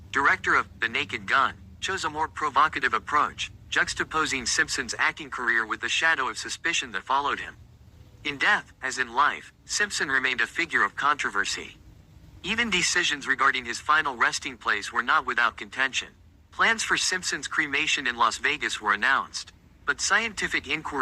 director of The Naked Gun, chose a more provocative approach, juxtaposing Simpson's acting career with the shadow of suspicion that followed him. In death, as in life, Simpson remained a figure of controversy. Even decisions regarding his final resting place were not without contention. Plans for Simpson's cremation in Las Vegas were announced, but scientific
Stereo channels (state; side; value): identical; both; correlation 1.00